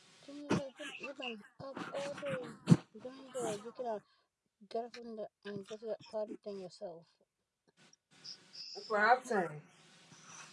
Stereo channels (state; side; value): identical; both; correlation 1.00